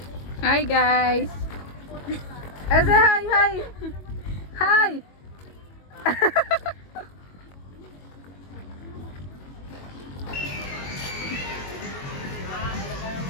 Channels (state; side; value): late; right; 22 ms